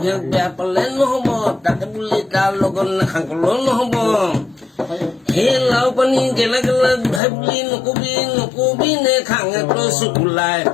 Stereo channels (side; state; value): right; drops out; at 7.2 s